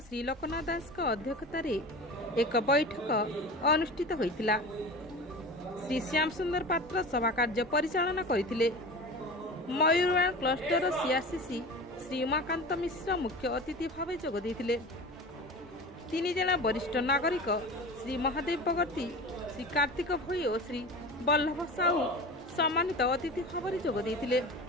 श्री लोकनाथ दास अध्यक्षतार एक बैठक अनुष्ठित होइतिला। श्री श्याम सुंदर पात्र सभा कार्य परिचालना करथिले। मयूरवाण क्लस्टर सीआरसीसी श्री उमाकांत मिश्र मुख्य अतिथि भाव जोग देथिले। 3 जना वरिष्ठ नागरिक श्री महादेव बगर्ती, श्री कार्तिक भोई और श्री बल्लभ साहू सम्मानित अतिथि भाव जोग देथिले।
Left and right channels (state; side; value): normal; both; correlation 0.33